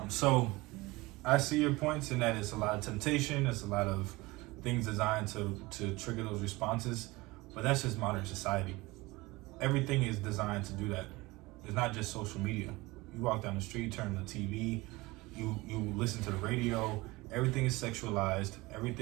So I see your points in that it's a lot of temptation. It's a lot of things designed to trigger those responses. But that's just modern society. Everything is designed to do that. It's not just social media. You walk down the street, turn on the TV, you listen to the radio. Everything is sexualized.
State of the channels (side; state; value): left; quieter; 21.8 dB